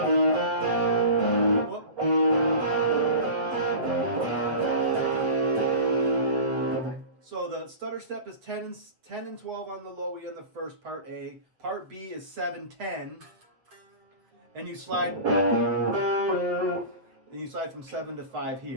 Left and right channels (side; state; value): left; late; 7.8 ms